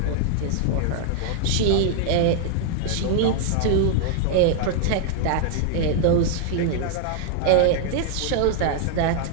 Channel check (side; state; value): both; different; correlation 0.00